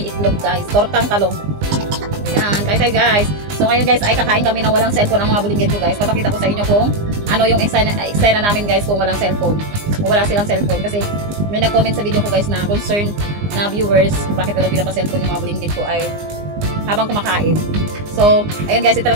itlog guys. Tortang talong. Ayan, guys. So ngayon guys, ay kakain kami ng walang cellphone ang mga bulinggit ko guys. Papakita ko sa inyo kung ano yung eksena namin guys kung walang cellphone. Kung wala silang cellphone. Kasi may nag-comment sa video ko guys na concern na viewers kung bakit wala pinapa-cellphone yung mga bulinggit ko ay habang kumakain. So, ayan guys,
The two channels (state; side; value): late; left; 20 ms